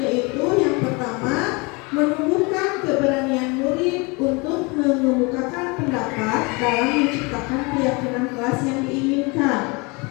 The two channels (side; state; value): right; quieter; 28.0 dB